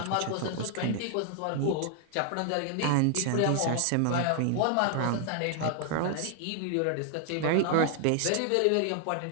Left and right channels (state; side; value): different; both; correlation 0.00